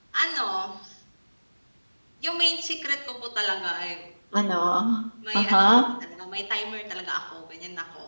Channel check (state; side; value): inverted; both; correlation -1.00